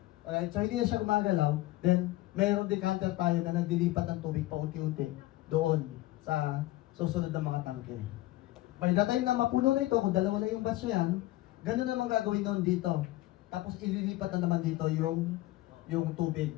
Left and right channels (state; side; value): quieter; right; 17.1 dB